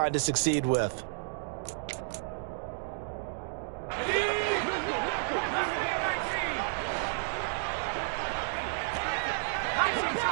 to succeed with.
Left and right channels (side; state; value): left; silent; digital silence